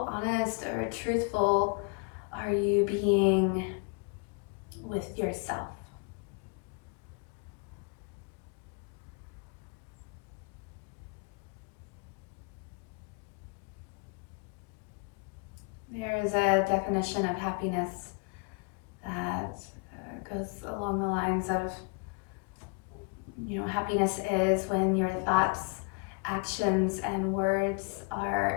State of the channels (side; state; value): right; quieter; 35.1 dB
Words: honest or truthful are you being with yourself. There is a definition of happiness that goes along the lines of, happiness is when your thoughts, actions, and words